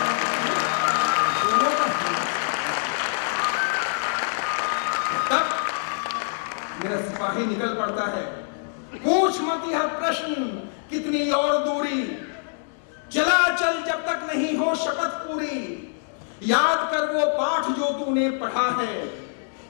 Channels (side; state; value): right; silent; digital silence